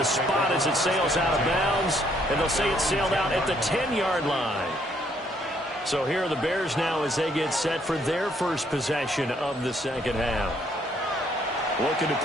spot as it sails out of bounds. And they'll say it sailed out at the 10-yard line. So here are the Bears now as they get set for their first possession of the second half. Looking to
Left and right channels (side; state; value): both; normal; correlation 0.68